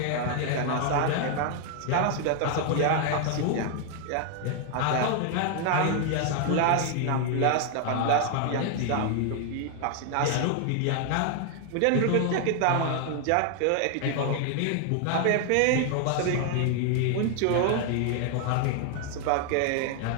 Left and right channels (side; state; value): both; different; correlation 0.00